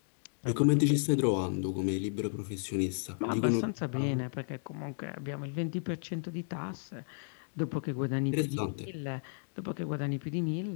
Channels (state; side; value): silent; right; digital silence